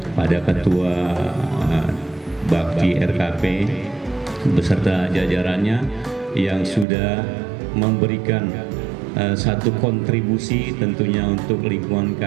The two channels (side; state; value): left; drops out; at 6.9 s